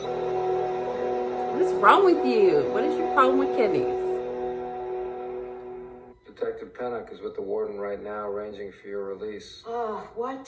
is wrong with you? What is your problem with kidneys? Detective Pennock is with the warden right now, arranging for your release. Oh,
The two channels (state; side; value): identical; both; correlation 1.00